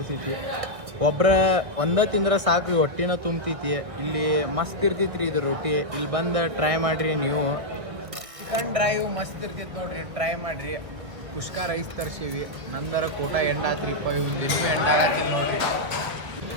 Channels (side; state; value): left; late; 1.6 ms